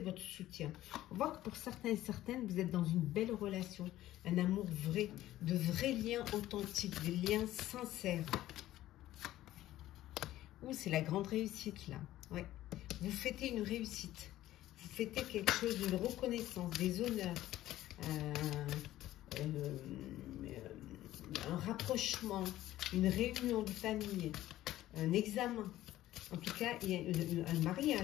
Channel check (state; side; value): quieter; right; 14.6 dB